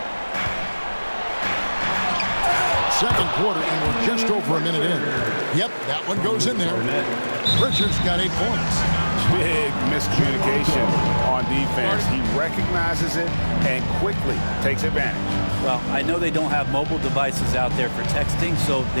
Second quarter, and we're just over a minute in. Yep, that one goes in there. Pritchard's got 8 points. Big miscommunication on defense. He recognizes it and quickly takes advantage. Well, I know they don't have mobile devices out there for texting, so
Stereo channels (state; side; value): inverted; both; correlation -1.00